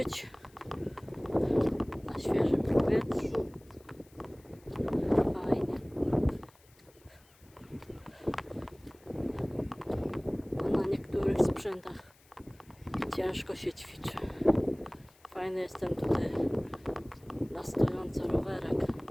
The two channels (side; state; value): left; noise; hiss, 29 dB below the sound